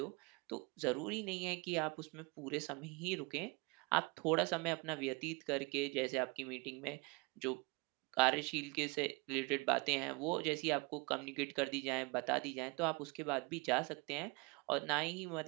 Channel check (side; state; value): left; quieter; 27.8 dB